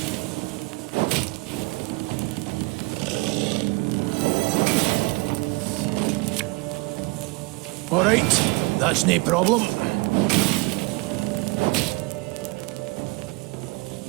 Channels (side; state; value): left; quieter; 26.9 dB